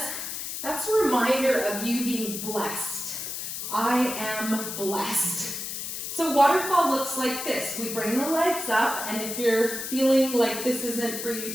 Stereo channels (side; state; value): left; noise; hiss, 6 dB below the sound